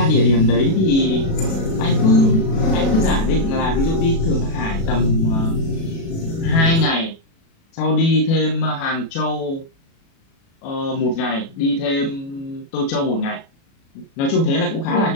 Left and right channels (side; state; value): right; late; 36 ms